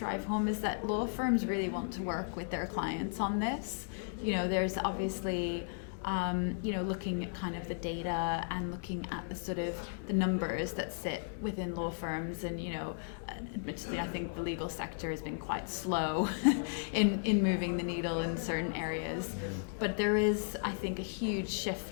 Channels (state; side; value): silent; right; digital silence